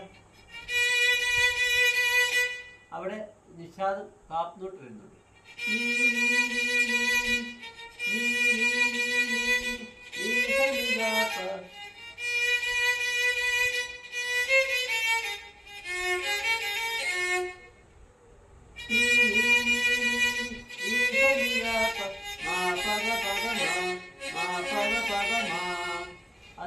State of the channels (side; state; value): both; identical; correlation 1.00